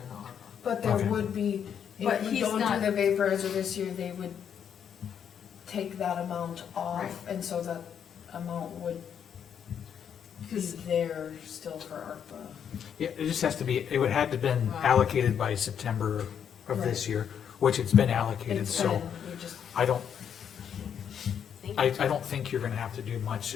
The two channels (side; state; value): right; quieter; 8.2 dB